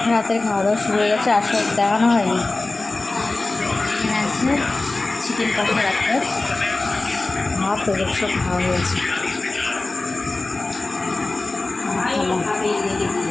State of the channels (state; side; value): quieter; right; 3.2 dB